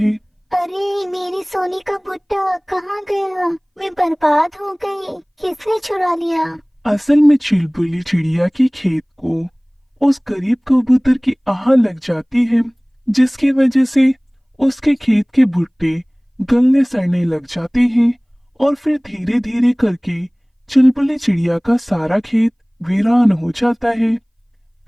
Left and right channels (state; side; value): identical; both; correlation 1.00